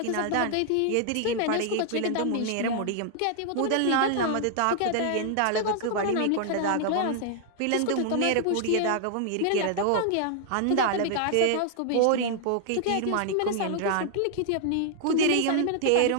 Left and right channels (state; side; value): different; both; correlation -0.01